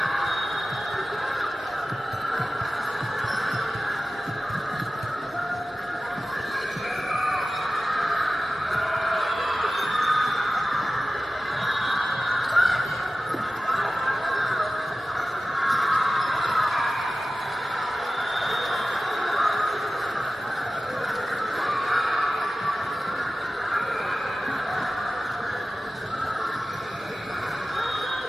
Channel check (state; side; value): normal; both; correlation 0.96